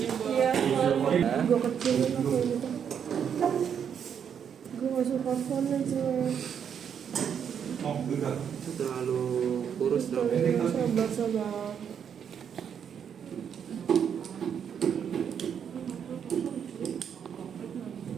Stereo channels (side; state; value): left; quieter; 7.9 dB